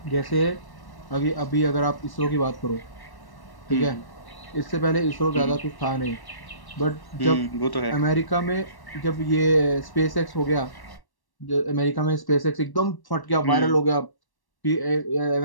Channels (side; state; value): right; late; 1.1 ms